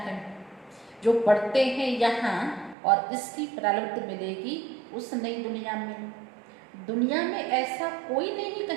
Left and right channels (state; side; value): drops out; left; at 2.8 s